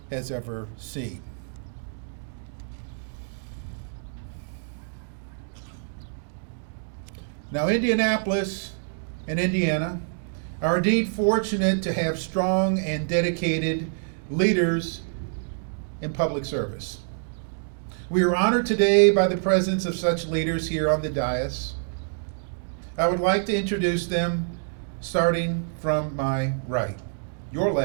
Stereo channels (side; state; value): left; silent; digital silence